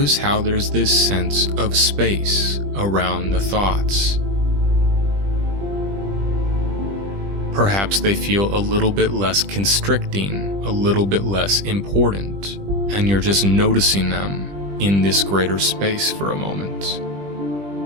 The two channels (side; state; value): left; late; 20 ms